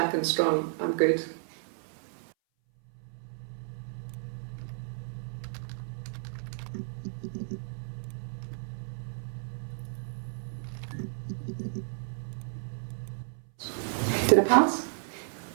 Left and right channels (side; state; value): left; silent; 56 dB below the other